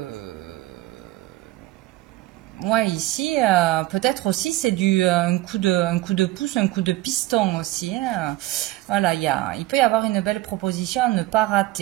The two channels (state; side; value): quieter; left; 16.9 dB